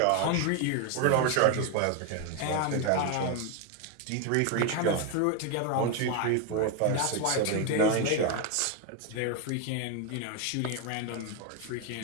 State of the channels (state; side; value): different; both; correlation 0.02